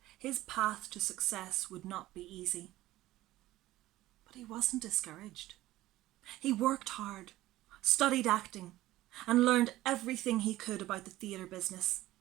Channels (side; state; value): left; quieter; 16.1 dB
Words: his path to success would not be easy. But he wasn't discouraged. He worked hard, studied acting, and learned everything he could about the theatre business.